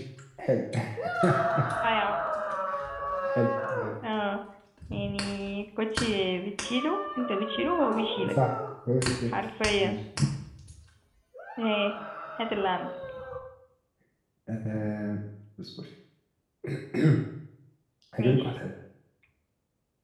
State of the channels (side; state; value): both; identical; correlation 1.00